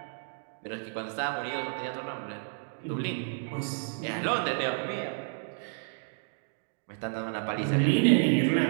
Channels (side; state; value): left; silent; digital silence